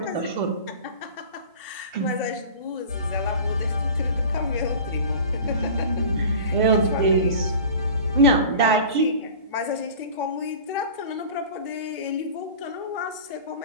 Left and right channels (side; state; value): both; inverted; correlation -0.38